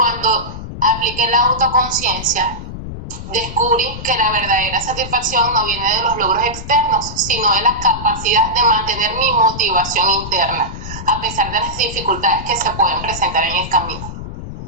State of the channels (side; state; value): left; noise; rumble, 10 dB below the sound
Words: apliqué la autoconciencia, descubrí que la verdadera satisfacción no viene de los logros externos, sino de la capacidad de mantener mi motivación interna. a pesar de las dificultades que se pueden presentar en el camino.